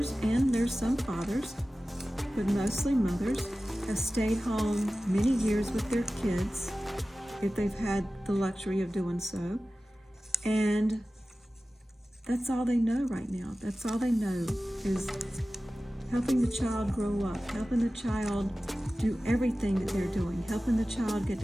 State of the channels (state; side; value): normal; both; correlation 0.96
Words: and there's some fathers, but mostly mothers, have stayed home many years with their kids, if they've had the luxury of doing so. And that's all they know right now. That's all they know is helping the child grow up, helping the child do everything that they're doing, helping the child get